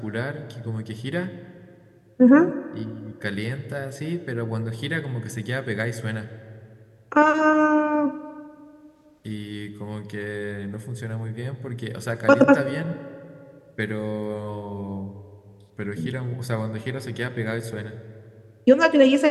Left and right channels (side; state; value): both; identical; correlation 1.00